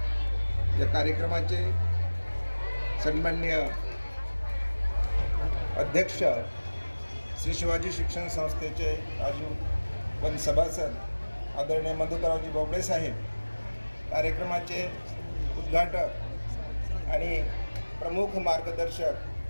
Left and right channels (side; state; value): both; inverted; correlation -1.00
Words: या कार्यक्रमाचे सन्माननीय अध्यक्ष श्री शिवाजी शिक्षण संस्थेचे आजीवन सभासद आदरणीय मधुकररावजी बोबडे साहेब, कार्यक्रमाचे उद्घाटक आणि प्रमुख मार्गदर्शक